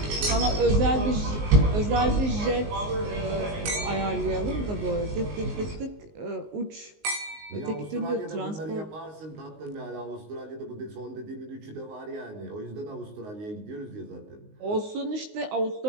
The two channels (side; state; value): left; late; 19 ms